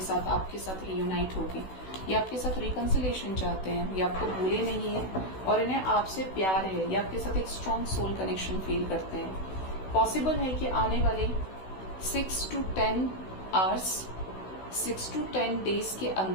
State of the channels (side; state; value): right; late; 16 ms